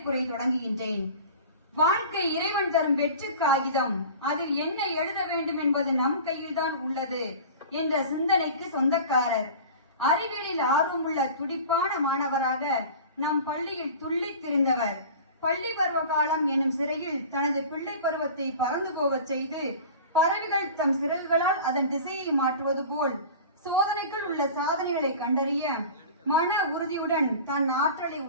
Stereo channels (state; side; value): inverted; both; correlation -0.38